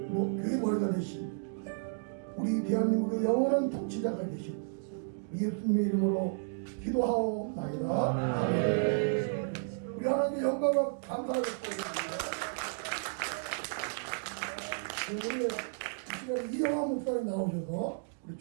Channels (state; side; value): silent; left; digital silence